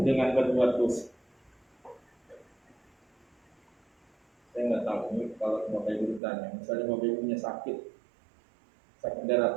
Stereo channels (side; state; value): left; drops out; at 6.2 s